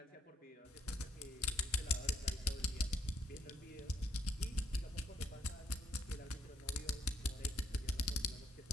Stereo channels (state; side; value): normal; both; correlation 0.69